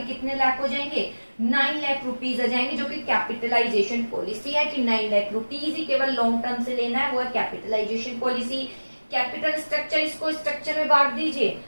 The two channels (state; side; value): inverted; both; correlation -1.00